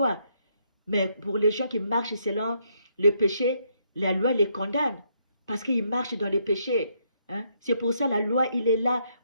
Mais pour les gens qui marchent selon le péché, la loi les condamne parce qu'ils marchent dans le péché. Hein? C'est pour ça la loi, il est là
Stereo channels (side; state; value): both; inverted; correlation -0.74